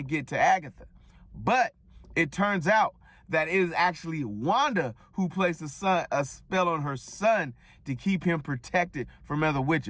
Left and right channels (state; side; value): identical; both; correlation 1.00